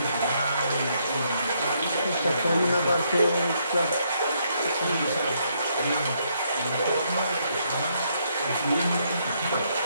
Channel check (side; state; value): both; inverted; correlation -0.74